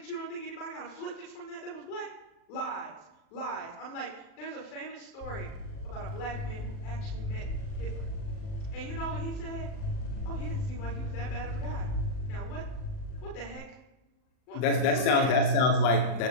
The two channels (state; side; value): late; right; 39 ms